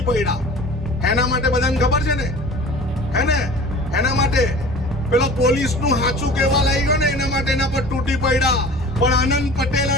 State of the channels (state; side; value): normal; both; correlation 0.41